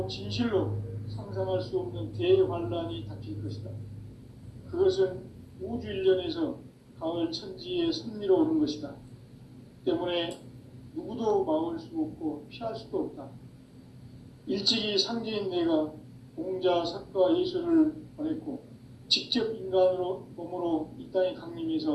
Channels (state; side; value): identical; both; correlation 1.00